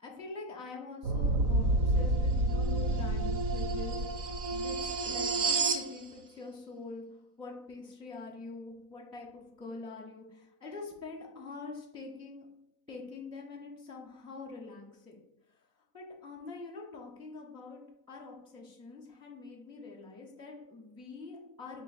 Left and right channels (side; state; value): left; late; 4.0 ms